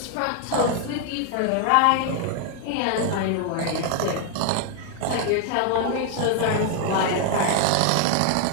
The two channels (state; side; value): different; both; correlation 0.00